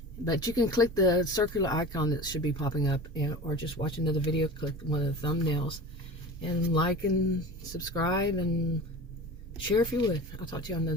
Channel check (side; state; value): both; normal; correlation 0.34